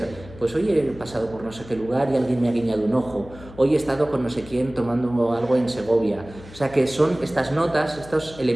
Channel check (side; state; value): left; noise; hum, 18 dB below the sound